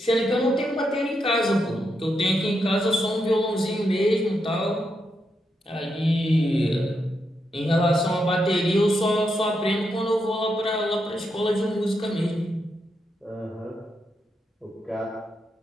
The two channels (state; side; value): normal; both; correlation 0.83